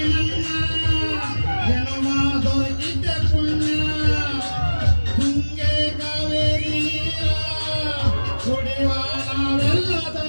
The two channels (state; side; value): inverted; both; correlation -1.00